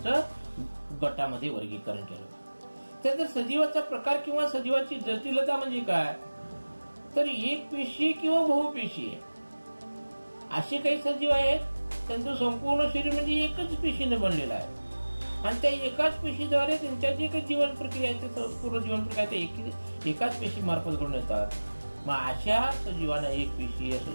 गटामध्ये वर्गीकरण केलं. त्यानंतर सजीवाचा प्रकार किंवा सजीवाची जटिलता म्हणजे काय, तर एक पेशी किंवा बहुपेशी आहे. असे काही सजीव आहेत त्यांचं संपूर्ण शरीर म्हणजे एकच पेशीने बनलेलं आहे आणि त्या एकाच पेशीद्वारे त्यांच्या जे काही जीवन प्रक्रिया आहे ते पूर्ण जीवन प्रक्रिया एकाच पेशी मार्फत घडून येतात. मग अशा सजीवांना एक पेशी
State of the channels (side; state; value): both; inverted; correlation -1.00